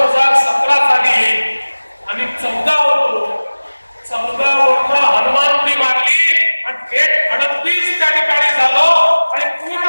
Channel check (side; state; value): both; inverted; correlation -1.00